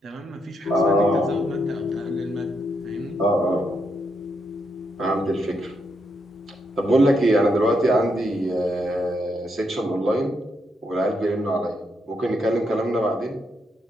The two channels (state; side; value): normal; both; correlation 0.80